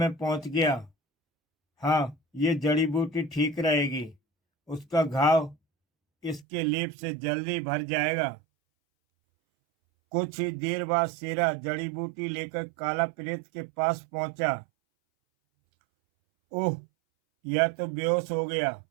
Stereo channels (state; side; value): drops out; left; at 6.5 s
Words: पहुंच गया। हाँ, ये जड़ी बूटी ठीक रहेगी। उसका घाव इसके लेप से जल्दी भर जाएगा। कुछ ही देर बाद शेरा जड़ी बूटी लेकर काला प्रेत के पास पहुंचा। ओह, यह तो बेहोश हो गया।